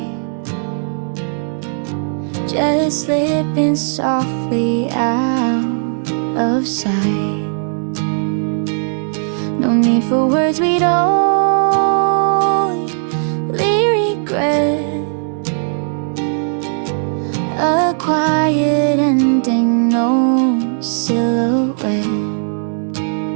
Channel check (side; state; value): left; silent; digital silence